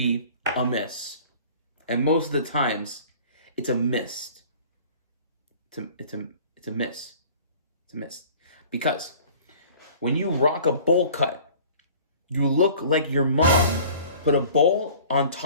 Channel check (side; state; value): both; inverted; correlation -0.48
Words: a miss. And most of the times, it's a miss. It's a miss. It's a miss. Because when you rock a bowl cut, you look like your mom put a bowl on